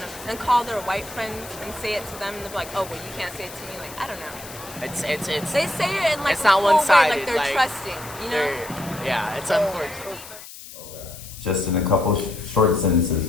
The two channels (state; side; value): noise; left; hiss, 15 dB below the sound